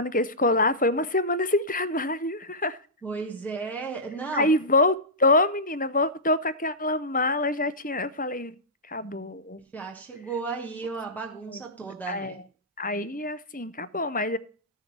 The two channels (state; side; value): normal; both; correlation -0.15